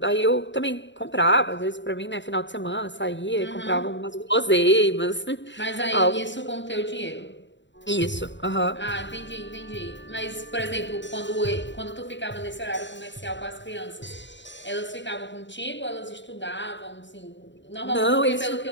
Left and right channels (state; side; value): late; right; 0.53 ms